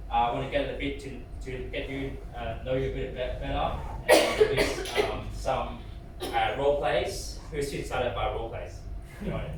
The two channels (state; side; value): identical; both; correlation 1.00